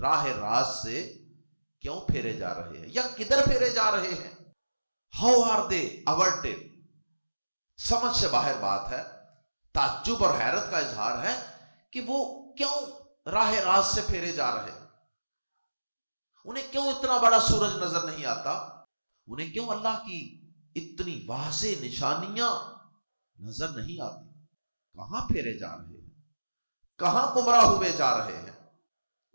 راہ راست سے کیوں پھیرے جا رہے ہیں یا کدھر پھیرے جا رہے ہیں؟ ہاؤ آر دے averted، سمجھ سے باہر بات ہے، تعجب اور حیرت کا اظہار ہے کہ وہ کیوں راہ راست سے پھیرے جا رہے ہیں، انہیں کیوں اتنا بڑا سورج نظر نہیں آتا، انہیں کیوں اللہ کی اتنی واضح نشانیاں نظر نہیں آتی، کہاں پھیرے جا رہے ہیں؟ کہاں گمراہ ہوئے جا رہے ہیں؟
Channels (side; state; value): both; inverted; correlation -1.00